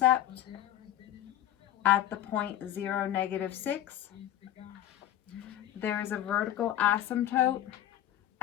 at the point 0, -6. There is a vertical asymptote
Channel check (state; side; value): quieter; right; 12.1 dB